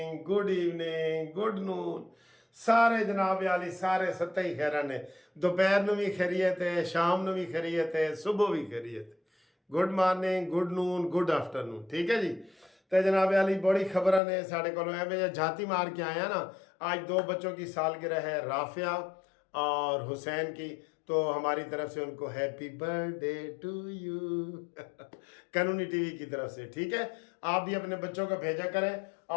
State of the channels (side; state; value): right; drops out; at 14.2 s